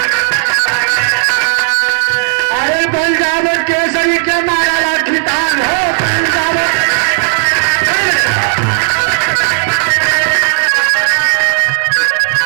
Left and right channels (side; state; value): left; silent; 71 dB below the other